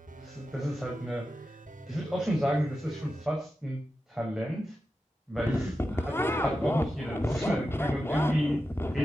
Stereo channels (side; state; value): both; normal; correlation 0.91